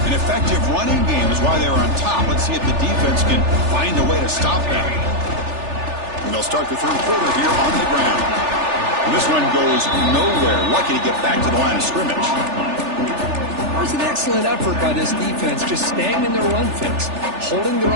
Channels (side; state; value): left; late; 3.4 ms